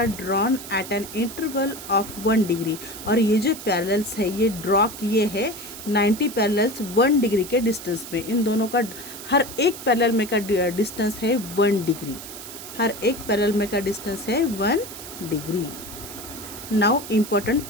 drawn at an interval of 1 degree। और ये जो parallels है ये ड्रॉ किए हैं 90 पैरेलल्स 1 डिग्री के डिस्टेंस में। इन दोनों का हर एक पैरेलल में का डिस्टेंस है 1 डिग्री। हर एक पैरेलल में का डिस्टेंस है 1 डिग्री। Now important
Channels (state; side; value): noise; right; hiss, 12 dB below the sound